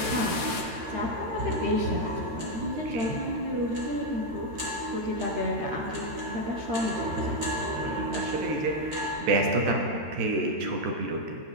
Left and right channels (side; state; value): left; late; 13 ms